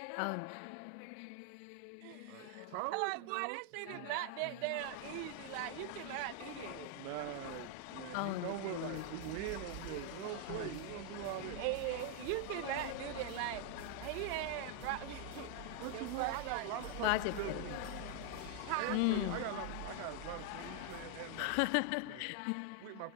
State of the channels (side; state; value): both; different; correlation 0.00